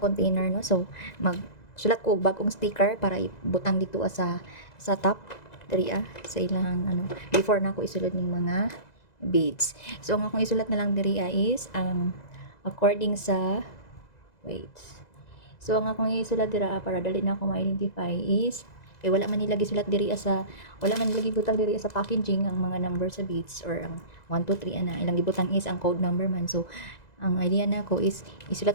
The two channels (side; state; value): right; late; 2.0 ms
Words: container no. So sulat ko bagong sticker para ibutang dito sa top diri sa ilang ano before na ako isulod ning mga beads. So ang akong isulat na lang diri is ang according sa wait. So ang akong isulat dira para dali na ako ma-identify is kay wala man nilagi sulat diri wala man nilagi butang diri sa packaging ang mga number sa beads or ang 1 2 3 ana ilang gibutang is ang code number man. So ang idea na ko is